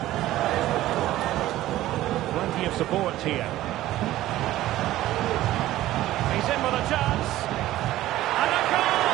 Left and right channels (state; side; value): quieter; left; 15.1 dB